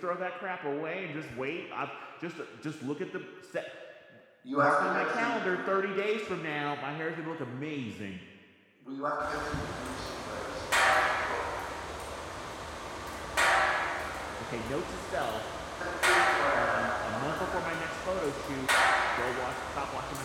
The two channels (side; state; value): both; identical; correlation 1.00